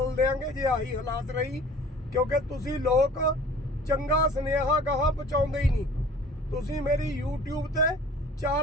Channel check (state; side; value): normal; both; correlation 0.48